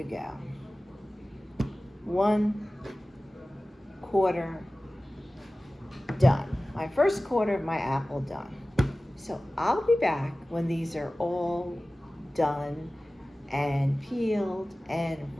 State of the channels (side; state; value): both; normal; correlation 0.97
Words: go. 1/4 done. My first quarter of my apple done. So I'll be back when these are all done and peeled and